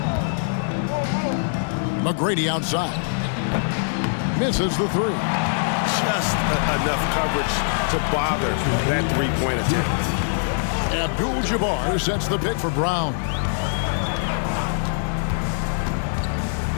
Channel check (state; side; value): silent; right; digital silence